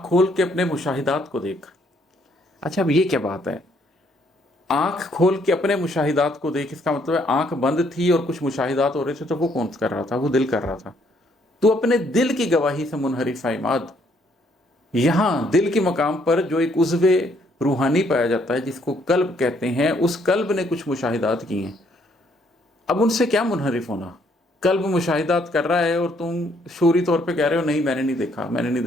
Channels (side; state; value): both; normal; correlation 0.68